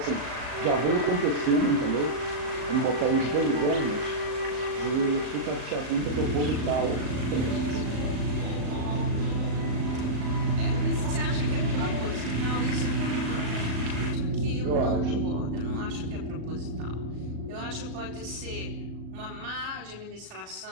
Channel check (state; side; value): late; left; 34 ms